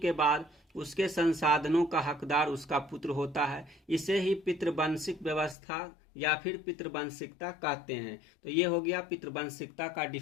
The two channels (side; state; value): right; drops out; at 5.6 s